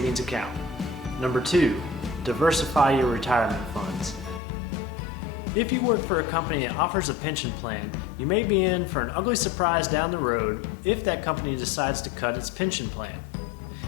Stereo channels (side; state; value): right; drops out; at 4.4 s